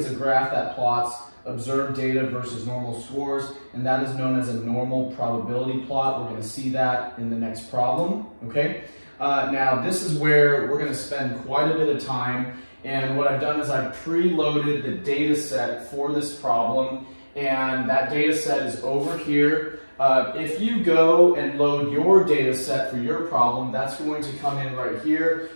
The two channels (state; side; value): inverted; both; correlation -1.00